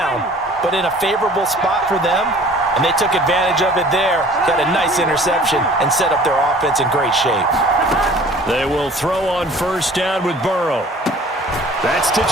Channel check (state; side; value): normal; both; correlation 0.49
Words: but in a favorable spot for them. And they took advantage of it there, got a nice interception, and set up their offense in great shape. They will throw on 1st down with Burrow. That's to